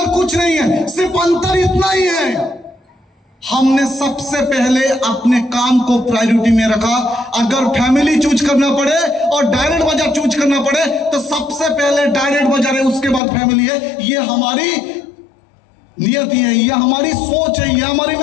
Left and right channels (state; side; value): drops out; right; at 13.2 s